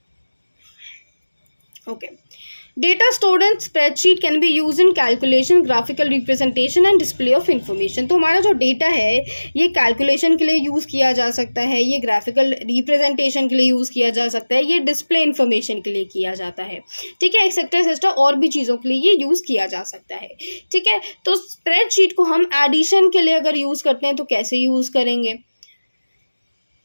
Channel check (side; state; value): both; inverted; correlation -1.00